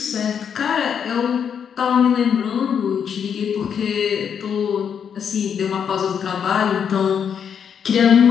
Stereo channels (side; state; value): right; quieter; 7.7 dB